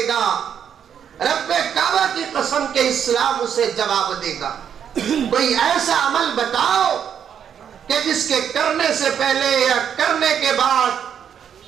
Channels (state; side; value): quieter; left; 8.4 dB